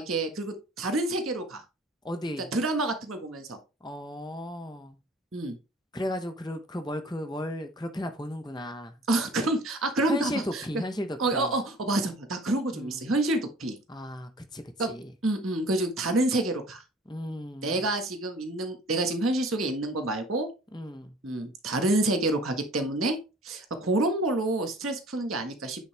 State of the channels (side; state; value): both; normal; correlation 0.49